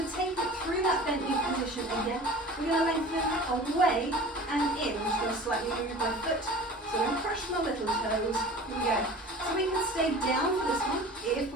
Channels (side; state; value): both; normal; correlation 0.40